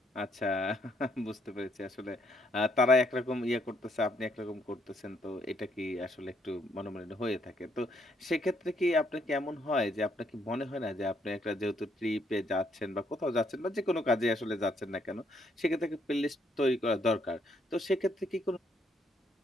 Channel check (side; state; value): both; normal; correlation 0.71